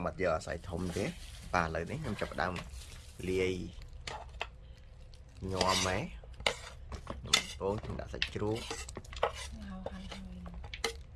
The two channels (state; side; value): identical; both; correlation 1.00